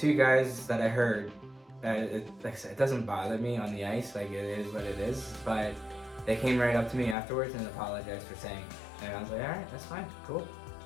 guys that I heard. Like I said, it doesn't bother me on the ice. It is what it is. But they came right up to me afterwards and apologized for saying it. And I was like, all right, that's fine, cool.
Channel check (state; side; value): drops out; right; at 7.2 s